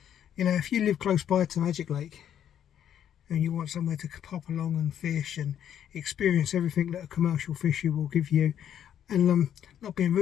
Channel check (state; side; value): quieter; right; 9.8 dB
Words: you know, if you live close by to Magic Lake and you want somewhere to pop along and fish and experience everything that a commercial fisher will give you, and not being